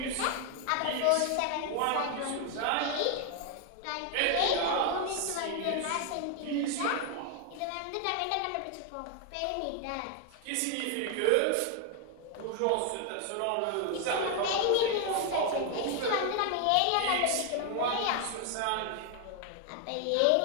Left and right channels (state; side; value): different; both; correlation 0.00